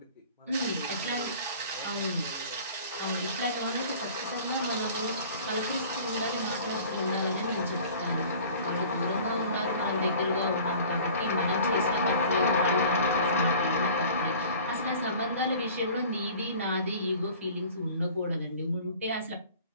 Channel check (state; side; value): inverted; both; correlation -0.46